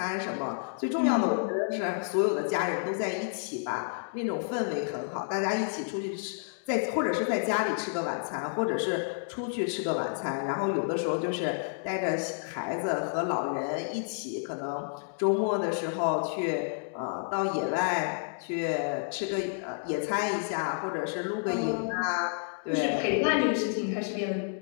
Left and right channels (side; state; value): right; silent; digital silence